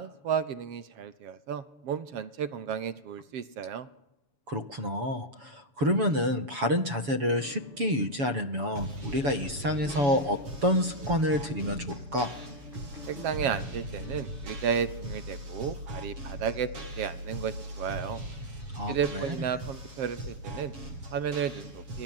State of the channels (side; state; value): left; late; 7.1 ms